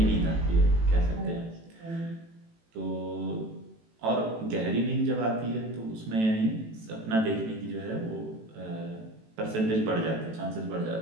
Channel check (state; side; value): late; left; 18 ms